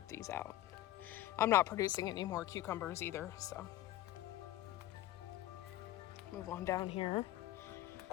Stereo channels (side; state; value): right; quieter; 14.5 dB